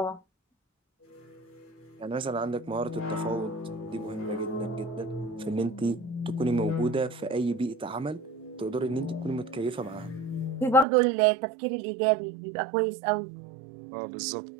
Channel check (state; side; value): drops out; left; at 10.9 s